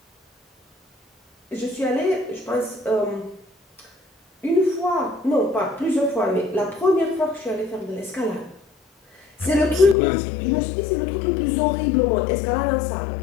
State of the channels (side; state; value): right; drops out; at 10.0 s